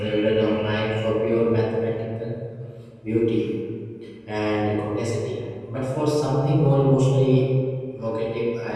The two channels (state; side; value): identical; both; correlation 1.00